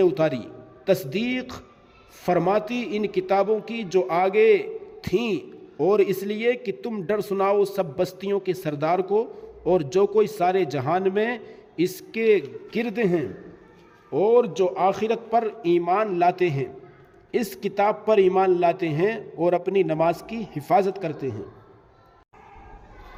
اتاری، تصدیق فرماتی ان کتابوں کی جو آگے تھیں، اور اس لیے کہ تم ڈر سناؤ سب بستیوں کے سردار کو اور جو کوئی سارے جہان میں اس کے گرد ہیں، اور جو آخرت پر ایمان لاتے ہیں، اس کتاب پر ایمان لاتے ہیں اور اپنی نماز کی حفاظت کرتے ہیں.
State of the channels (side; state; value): both; identical; correlation 1.00